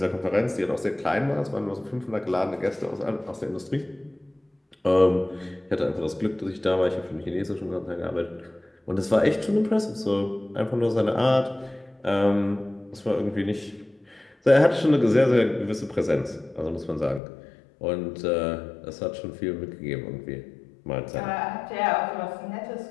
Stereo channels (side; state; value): right; drops out; at 17.2 s